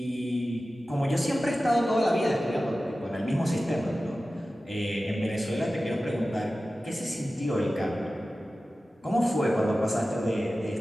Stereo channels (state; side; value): normal; both; correlation 0.95